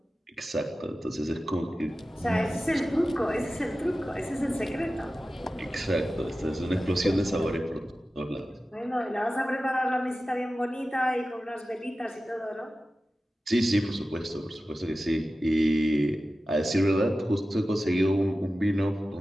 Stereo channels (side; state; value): both; normal; correlation 0.95